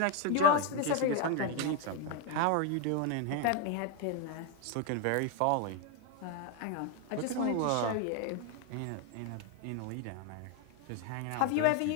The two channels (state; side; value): different; both; correlation 0.01